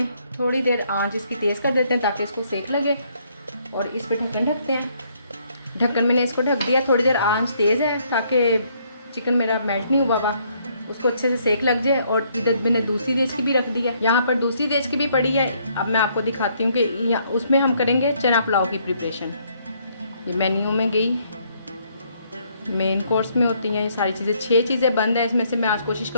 थोड़ी देर आंच इसकी तेज़ कर देते हैं ताकि इसको सेक लगे, और इस पे ढक्कन ढकते हैं। ढक्कन मैंने इसको ढक दिया, थोड़ी देर आंच तेज़ है ताकि चिकन मेरा मेल्ट नहीं हुआ हुआ, उसको अच्छे से सेक लग जाए। और इधर मैंने दूसरी देश की भी रख दी है, यहाँ पर दूसरी देश की भी पड़ी है। अब मैं आपको दिखाती हूँ कि उसमें हम करेंगे चना पुलाव की प्रिपरेशन। ये मेन्यू में गई, मेन कोर्स में होती हैं ये सारी चीज़ें। 6 चीज़ें बंद है, इसमें से मैं आज कोशिश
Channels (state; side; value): inverted; both; correlation -0.69